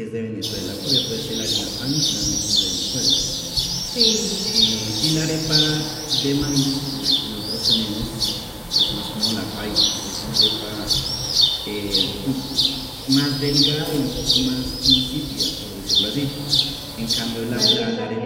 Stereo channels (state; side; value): identical; both; correlation 1.00